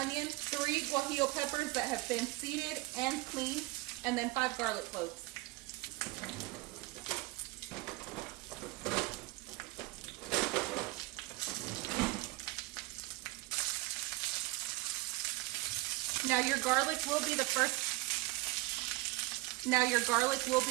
3 guajillo peppers that have been seeded and cleaned, and then 5 garlic cloves. Now your garlic will be the first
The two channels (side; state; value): left; quieter; 21.2 dB